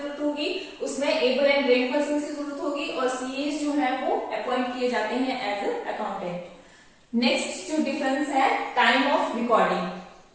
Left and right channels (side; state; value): both; identical; correlation 1.00